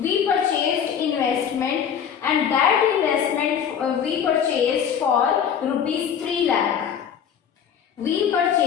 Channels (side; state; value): right; quieter; 8.1 dB